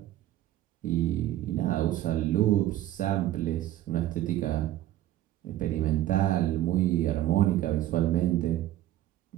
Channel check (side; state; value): left; quieter; 13.9 dB